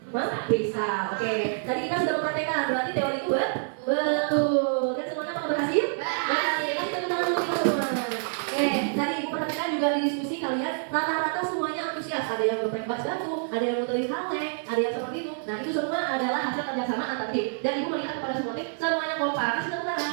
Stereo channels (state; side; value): silent; left; 60 dB below the other